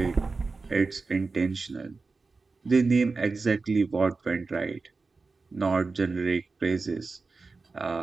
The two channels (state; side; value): quieter; left; 4.1 dB